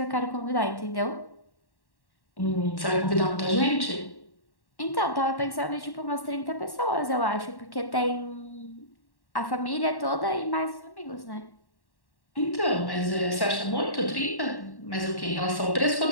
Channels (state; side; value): late; right; 1.1 ms